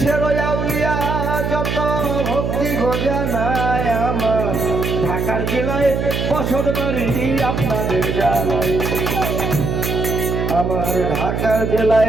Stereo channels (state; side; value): noise; right; hum, 1 dB below the sound